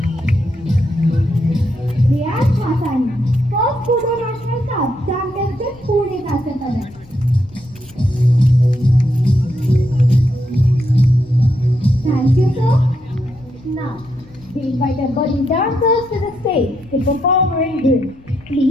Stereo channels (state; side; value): noise; left; rumble, 24 dB below the sound